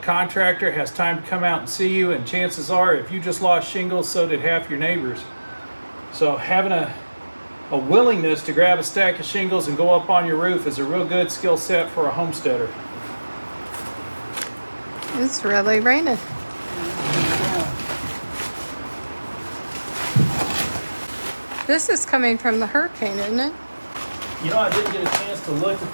has time to come out and see you, and chances are if you just lost shingles, so did half your neighbors. So having a willingness to grab a stack of shingles and go up on your roof is a real good skill set for a homesteader. It's really raining. This is coming from the hurricane, isn't it? You know, I didn't get a chance to look at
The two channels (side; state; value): both; inverted; correlation -1.00